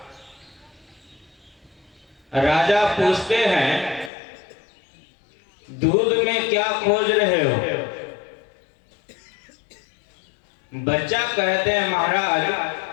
राजा पूछते हैं, दूध में क्या खोज रहे हो? बच्चा कहते हैं, महाराज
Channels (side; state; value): right; drops out; at 4.1 s